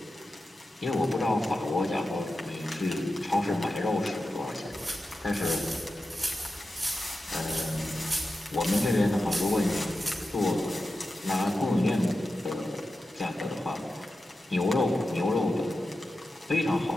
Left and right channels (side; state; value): both; normal; correlation 0.92